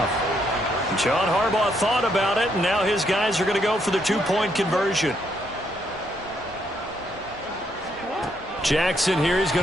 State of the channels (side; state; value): both; normal; correlation 0.74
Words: John Harbaugh thought about it, and now his guys are going to go for the two-point conversion. Jackson here is